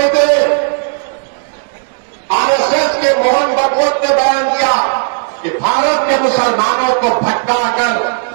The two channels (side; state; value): left; silent; digital silence